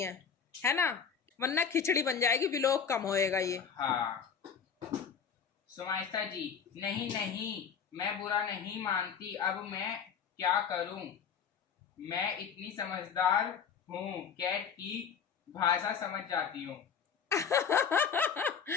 हैं, है ना, वरना खिचड़ी बन जाएगी, व्लॉग कम होएगा ये। हाँ। सुमाइस्ता जी, नहीं मैं बुरा नहीं मानती, अब मैं क्या करूं, मैं इतनी समझदार हूं, कैट की भाषा समझ जाती हूँ।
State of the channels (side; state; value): right; quieter; 6.9 dB